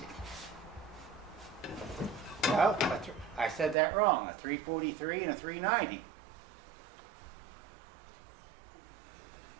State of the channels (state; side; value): drops out; left; at 3.8 s